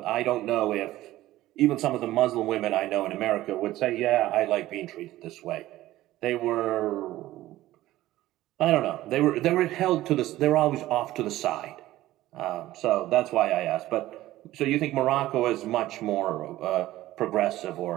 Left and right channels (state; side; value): quieter; left; 15.7 dB